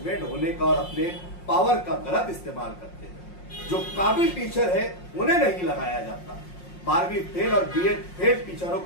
होने का और अपने पावर का गलत इस्तेमाल करते हैं। जो काबिल टीचर है उन्हें नहीं लगाया जाता। 12वीं फेल और बीएड फेल टीचरों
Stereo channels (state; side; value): late; right; 5.6 ms